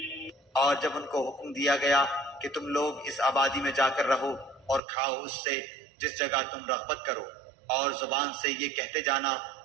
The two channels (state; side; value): drops out; left; at 4.8 s